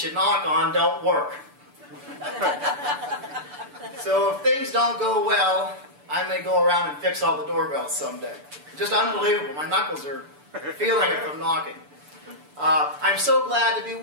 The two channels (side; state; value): left; late; 6.8 ms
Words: you knock on don't work. So if things don't go well, I may go around and fix all the doorbells someday. Just unbelievable. My knuckles are feeling it from knocking. I'm so glad to be